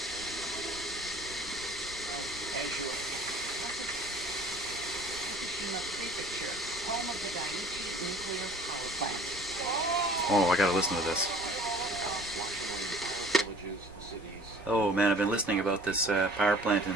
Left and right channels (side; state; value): both; normal; correlation 0.49